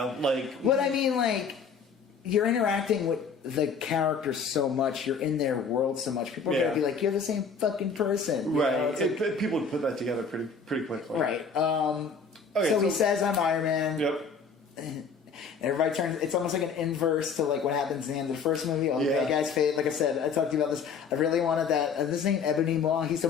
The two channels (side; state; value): right; quieter; 5.4 dB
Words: But I mean, you're interacting with the characters so much, you're in their world so much, people are going to be like, you're the same fucking person. Right. People would put that together pretty quickly. Right. So he says, I'm Iron Man. Yep. Everybody turns. It's almost like an inverse to what happens in the end of the first movie. All the bad guys fade. Like I said, I talked to you about this. I really wanted that. This ain't Ebony Maw. He's the